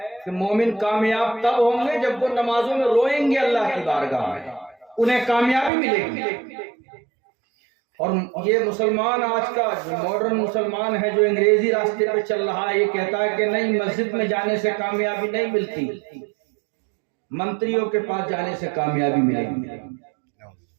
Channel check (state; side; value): drops out; left; at 5.7 s